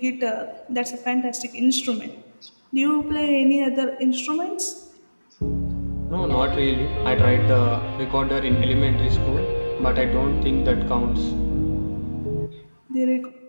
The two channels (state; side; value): inverted; both; correlation -1.00